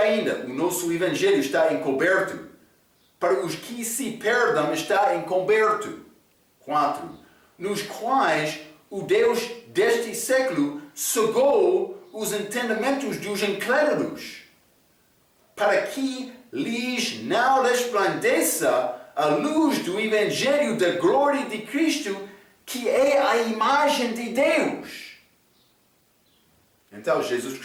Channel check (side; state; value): both; identical; correlation 1.00